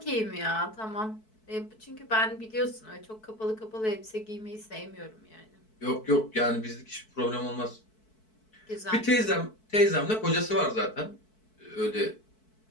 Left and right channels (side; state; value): right; late; 4.6 ms